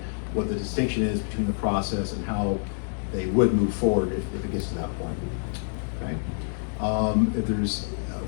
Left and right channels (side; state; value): right; silent; 60 dB below the other